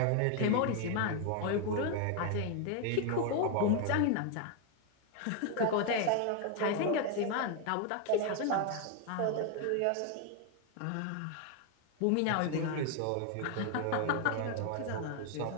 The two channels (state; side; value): different; both; correlation 0.01